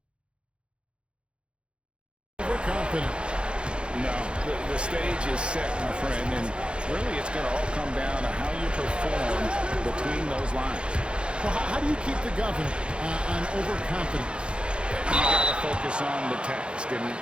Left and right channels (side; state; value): left; late; 0.055 ms